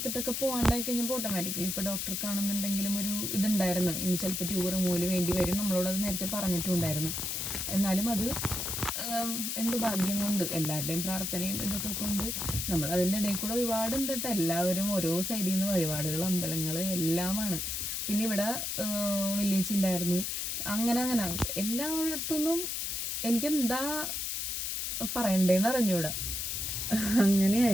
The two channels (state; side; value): noise; left; hiss, 2 dB below the sound